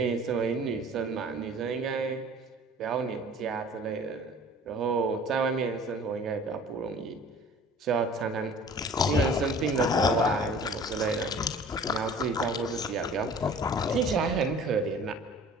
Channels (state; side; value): normal; both; correlation 0.47